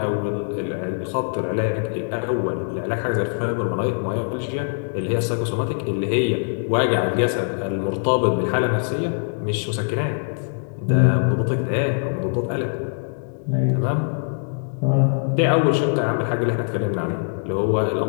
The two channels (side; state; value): right; silent; 64 dB below the other